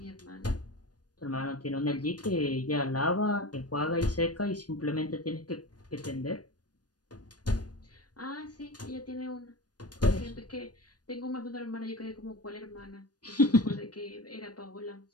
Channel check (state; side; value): late; right; 0.69 ms